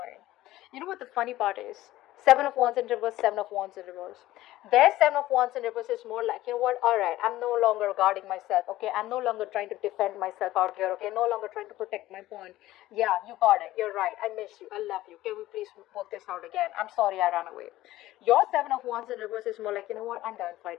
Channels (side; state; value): right; quieter; 15.8 dB